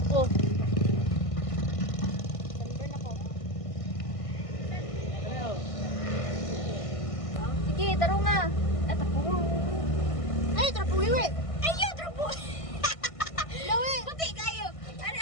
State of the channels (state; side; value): late; right; 1.5 ms